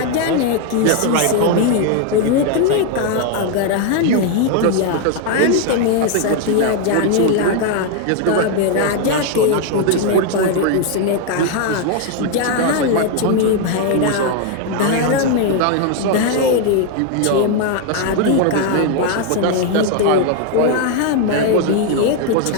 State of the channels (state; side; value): different; both; correlation 0.01